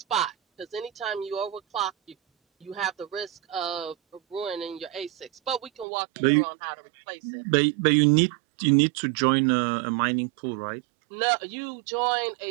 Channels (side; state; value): left; drops out; at 5.9 s